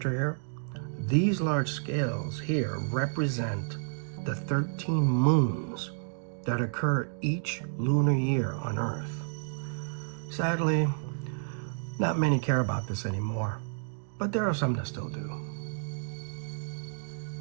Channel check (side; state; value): left; silent; digital silence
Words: here? These large scales here represent the 13 moons that occur each lunar year on Earth. Sadly, not many care about this anymore, but there are some that still do.